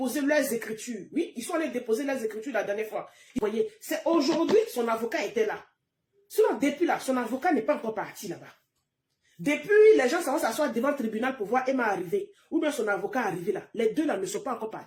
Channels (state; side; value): identical; both; correlation 1.00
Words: leurs écritures. Oui, ils sont allés déposer leurs écritures la dernière fois. Vous voyez, c'est aujourd'hui son avocat était là. Sinon, depuis là, son avocat n'est pas encore parti là-bas. Depuis, les gens vont s'asseoir devant le tribunal pour voir Emma arriver. Ou bien son avocat arriver là. Les deux là ne sont pas encore